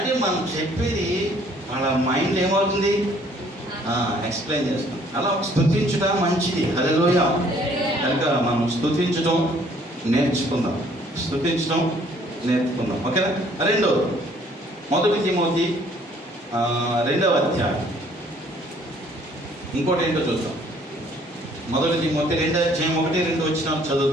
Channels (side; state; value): both; normal; correlation 0.60